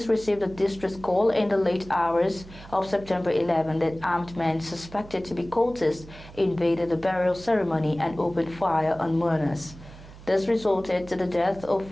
received a distress call in the late hours of September 11 that armed men suspected to be cultists invaded the burial ceremony and opened fire on mourners. This resulted to the death of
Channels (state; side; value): noise; right; hum, 18 dB below the sound